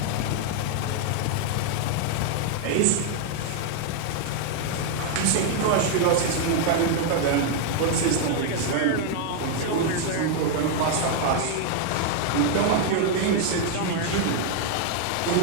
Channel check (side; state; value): both; different; correlation 0.00